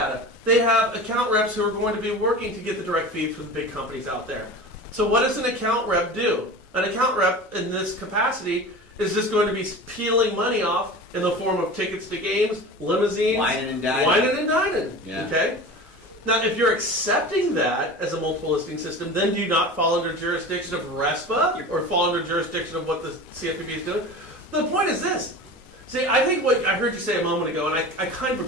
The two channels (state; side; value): normal; both; correlation 0.34